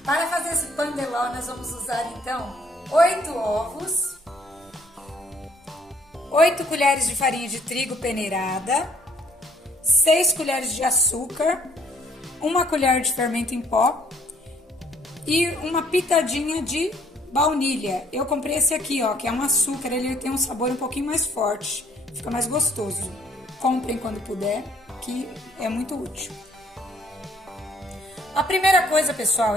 Para fazer esse pandeló, nós vamos usar então 8 ovos, 8 colheres de farinha de trigo peneirada, 6 colheres de açúcar, 1 colher de fermento em pó e uma pitadinha de baunilha. Eu comprei esse aqui, ó, que é um açúcar, ele tem um sabor um pouquinho mais forte, fica mais gostoso. Comprem quando puder, que é muito útil. A primeira coisa, pessoal,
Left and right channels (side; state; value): both; normal; correlation 0.62